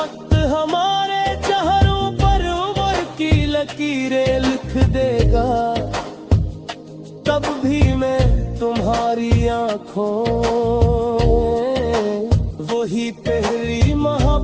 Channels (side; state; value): both; identical; correlation 1.00